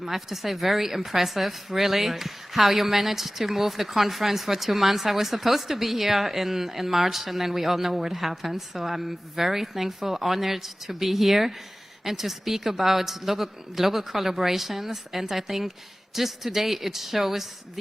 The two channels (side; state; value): both; normal; correlation 0.97